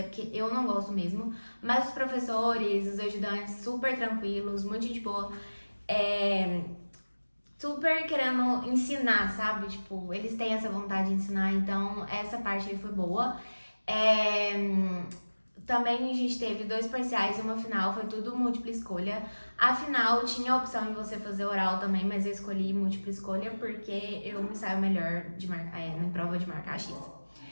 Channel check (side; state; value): both; inverted; correlation -1.00